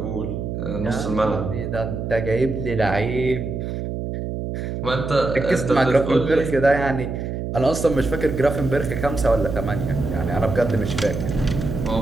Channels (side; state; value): right; noise; hum, 4 dB below the sound